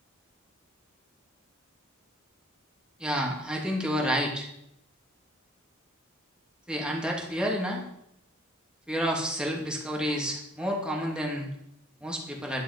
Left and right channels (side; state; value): both; normal; correlation 0.60